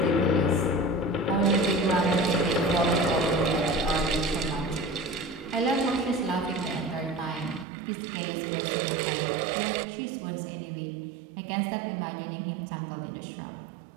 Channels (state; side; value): drops out; left; at 7.7 s